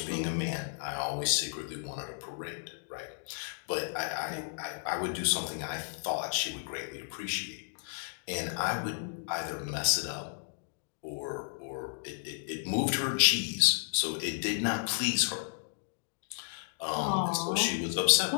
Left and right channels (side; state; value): right; silent; digital silence